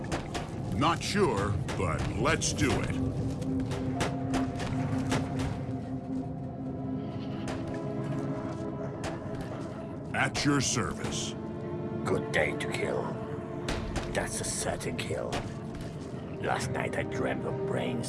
Not sure, but let's do it. At your service. Good day to kill. That's a certain kill. Last night I dreamt of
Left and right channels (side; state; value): both; identical; correlation 1.00